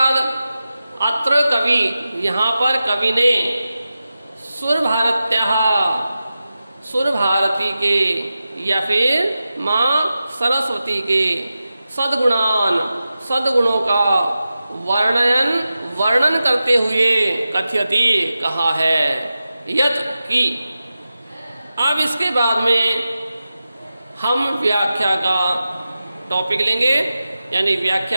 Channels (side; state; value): both; inverted; correlation -0.93